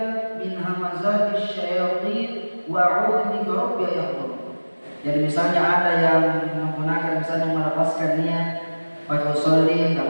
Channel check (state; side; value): inverted; both; correlation -1.00